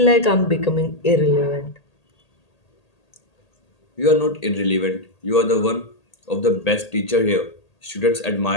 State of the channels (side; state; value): right; late; 1.8 ms